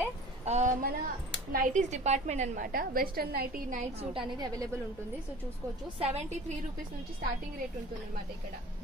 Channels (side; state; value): both; normal; correlation 0.42